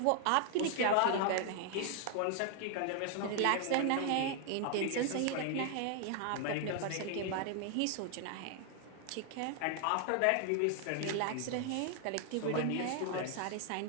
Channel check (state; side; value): different; both; correlation 0.00